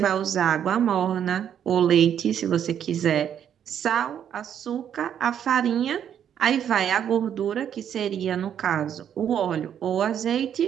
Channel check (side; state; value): left; quieter; 9.2 dB